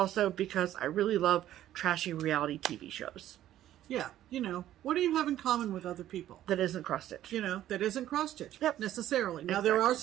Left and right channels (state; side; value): quieter; left; 12.7 dB